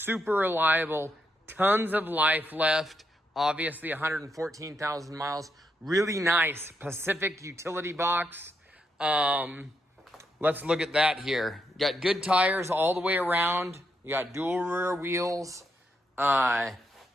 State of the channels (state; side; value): normal; both; correlation 0.80